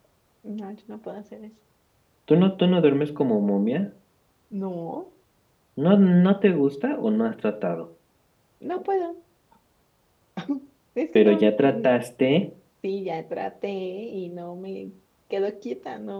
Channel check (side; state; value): both; identical; correlation 1.00